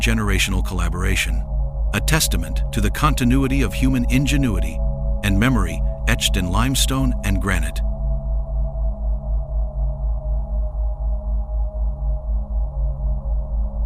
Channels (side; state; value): both; identical; correlation 1.00